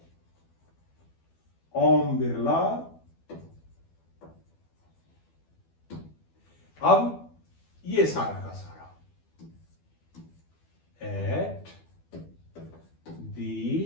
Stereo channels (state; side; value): late; right; 12 ms